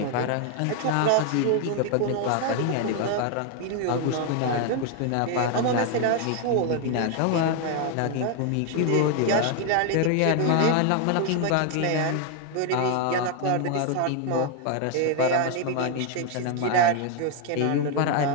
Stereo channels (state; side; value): different; both; correlation 0.01